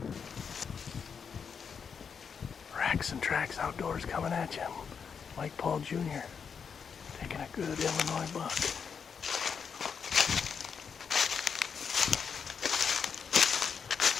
Racks and Tracks Outdoors coming at you. Mike Paul Jr. taking a good Illinois buck.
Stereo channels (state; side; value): quieter; right; 6.5 dB